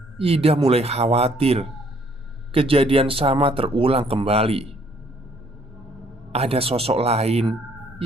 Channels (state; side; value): normal; both; correlation 0.64